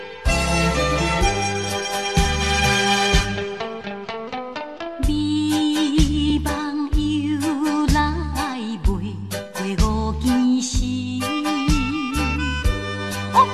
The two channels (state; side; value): identical; both; correlation 1.00